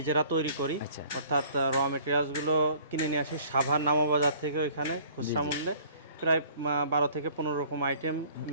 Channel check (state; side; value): inverted; both; correlation -0.54